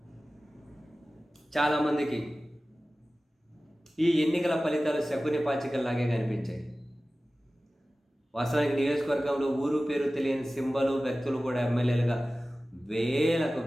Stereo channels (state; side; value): normal; both; correlation 0.96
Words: చాలామందికి ఈ ఎన్నికల ఫలితాలు శకుని పాచికల్లాగే కనిపించాయి. వాస్తవానికి నియోజకవర్గంలో ఊరు పేరు తెలియని సింబలు, వ్యక్తులు కూడా ఎమ్మెల్యేలుగా వేల